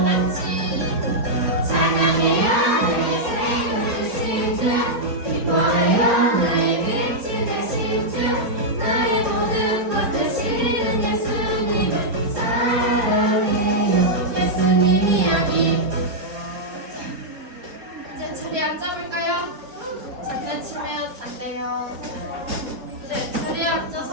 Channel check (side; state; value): left; late; 4.3 ms